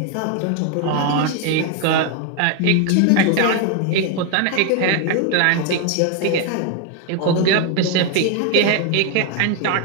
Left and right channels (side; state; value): both; different; correlation 0.01